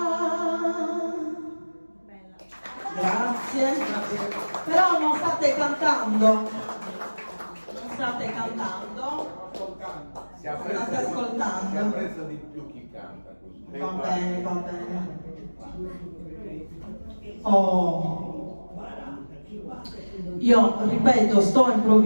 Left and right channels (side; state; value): both; inverted; correlation -1.00